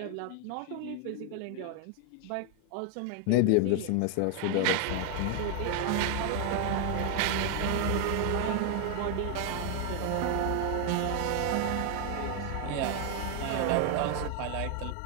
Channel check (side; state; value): both; different; correlation 0.01